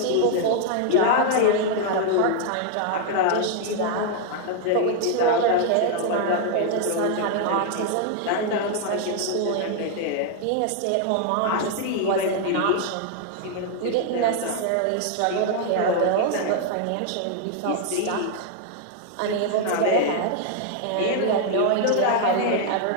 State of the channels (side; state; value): both; different; correlation 0.00